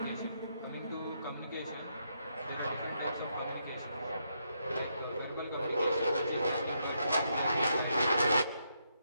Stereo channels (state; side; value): inverted; both; correlation -0.79